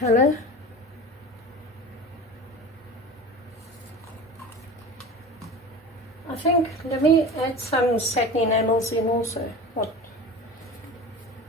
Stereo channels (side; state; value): both; normal; correlation 0.34